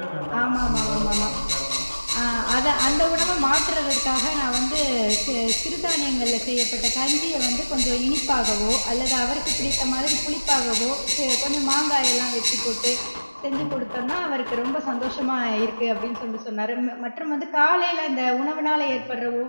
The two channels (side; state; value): both; inverted; correlation -1.00